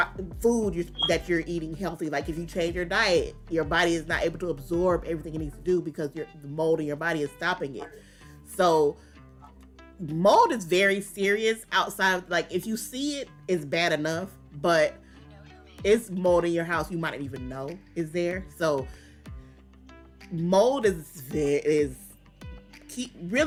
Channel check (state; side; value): identical; both; correlation 1.00